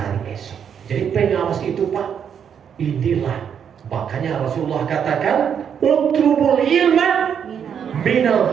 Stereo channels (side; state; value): left; quieter; 7.9 dB